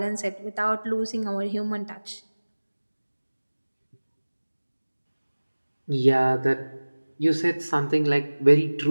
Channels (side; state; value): both; inverted; correlation -1.00